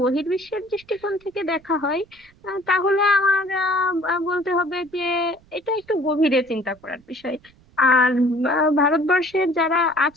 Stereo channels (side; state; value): right; noise; rumble, 29 dB below the sound